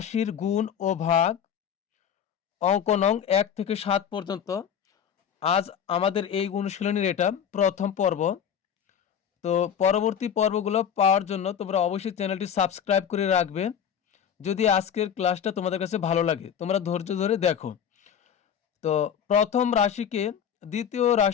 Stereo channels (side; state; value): right; quieter; 8.4 dB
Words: গুণ ও ভাগ, অঙ্ক নং 1 থেকে 7 পর্যন্ত। আজ আমাদের এই অনুশীলনীর এটা প্রথম পর্ব। তো পরবর্তী পর্বগুলো পাওয়ার জন্য তোমরা অবশ্যই চ্যানেলটি সাবস্ক্রাইব করে রাখবে। যদি আজকের ক্লাসটা তোমাদের কাছে ভালো লাগে, তোমরা ধৈর্য ধরে দেখো। তো প্রথম রাশিকে দ্বিতীয়